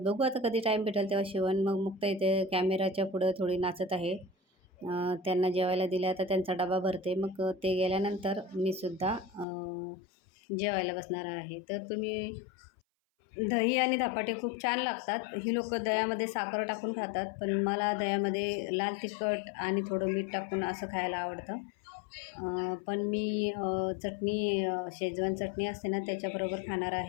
बघू आता कधी टाईम भेटेल तेव्हा शिवण. मग मुक्ता इथे कॅमेराच्या पुढं थोडी नाचत आहे. त्यांना जेवायला दिलं, आता त्यांचा डबा भरते. मग ते गेल्यानंतर मी सुद्धा जेवायला बसणार आहे. तर तुम्ही दही आणि धपाटे खूप छान लागतात. ही लोकं दह्यामध्ये साखर टाकून खातात, पण मला दह्यामध्ये लाल तिखट आणि थोडं मीठ टाकून असं खायला आवडतं. पण मी चटणी शेजवान चटणी असते ना त्याच्याबरोबर खाणार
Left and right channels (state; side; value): drops out; right; at 9.5 s